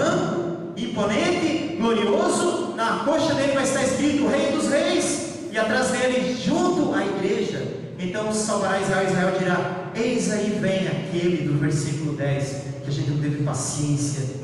imponente, glorioso. Na coxa dele vai estar escrito: Rei dos Reis, e atrás dele, junto à igreja, então salvará Israel. Israel dirá: eis aí vem aquele do versículo 10, que a gente não teve paciência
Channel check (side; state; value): both; identical; correlation 1.00